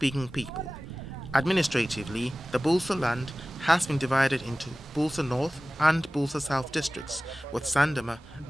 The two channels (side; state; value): both; normal; correlation 0.97